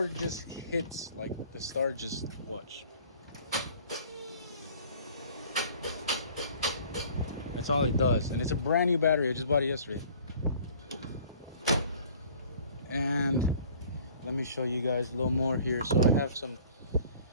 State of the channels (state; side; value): inverted; both; correlation -0.51